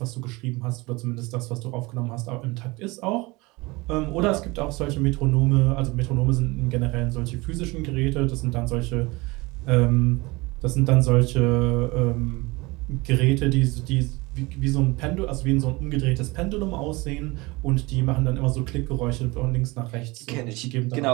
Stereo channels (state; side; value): quieter; left; 23.7 dB